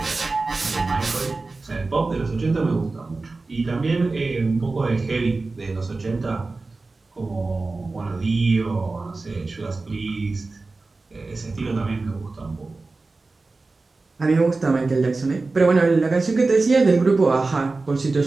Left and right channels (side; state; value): left; quieter; 3.6 dB